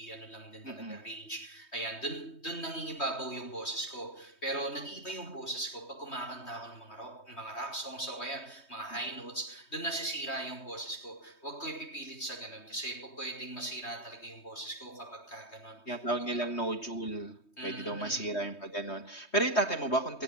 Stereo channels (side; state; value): right; late; 3.2 ms